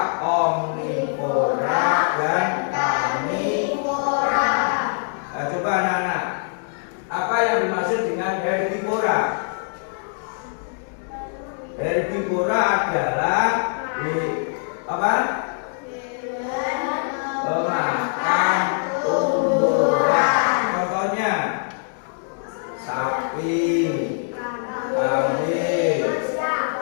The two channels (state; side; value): silent; right; digital silence